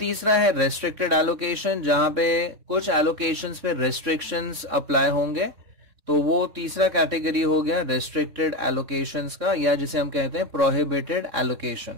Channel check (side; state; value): left; late; 3.6 ms